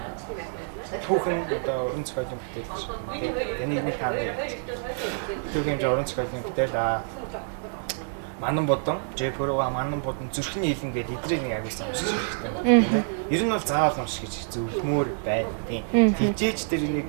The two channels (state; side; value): silent; left; digital silence